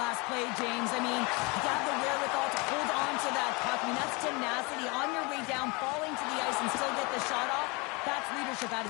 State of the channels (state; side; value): quieter; right; 27.9 dB